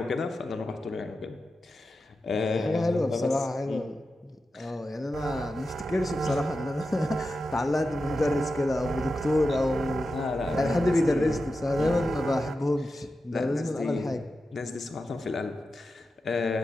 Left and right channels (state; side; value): normal; both; correlation 0.91